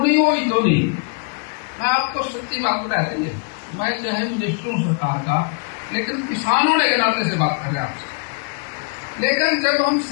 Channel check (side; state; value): right; quieter; 37.4 dB